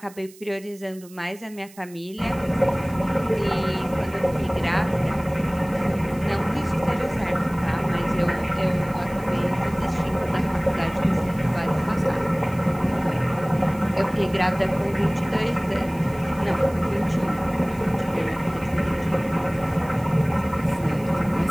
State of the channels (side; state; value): right; noise; hiss, 23 dB below the sound